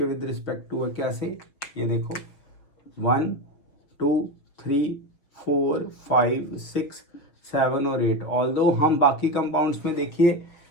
विद रिस्पेक्ट टू है। कैसे, ये देखो 1 2 3 4 5 6 7 और 8। ऑल्दो हम बाकी कंपाउंड्स में देखिए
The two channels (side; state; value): right; late; 6.4 ms